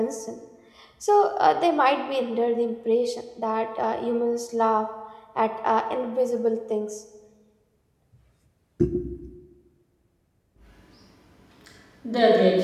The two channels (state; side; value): identical; both; correlation 1.00